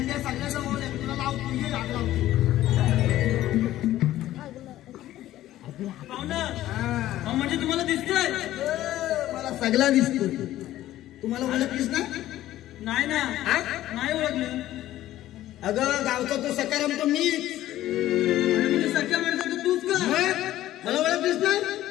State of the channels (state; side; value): quieter; right; 14.2 dB